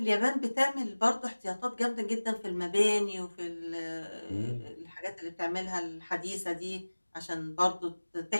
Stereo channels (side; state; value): both; inverted; correlation -1.00